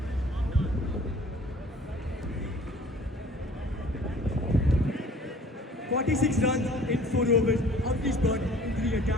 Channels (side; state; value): both; normal; correlation 0.51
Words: "46 runs in 4 overs. Avnish brought into the